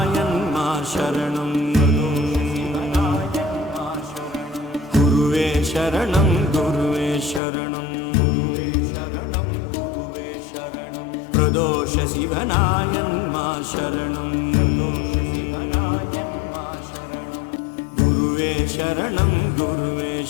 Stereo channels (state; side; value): drops out; right; at 7.4 s